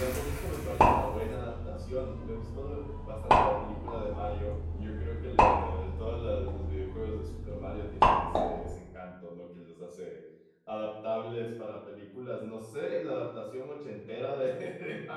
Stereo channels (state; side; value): identical; both; correlation 1.00